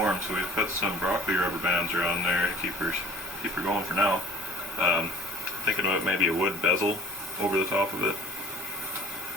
so we've put some broccoli rubber bands around there to keep her going for now. Thinking about maybe a wood bezel over the top of it.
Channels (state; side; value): normal; both; correlation 0.48